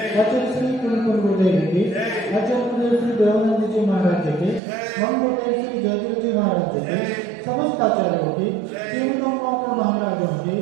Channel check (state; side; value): drops out; left; at 4.6 s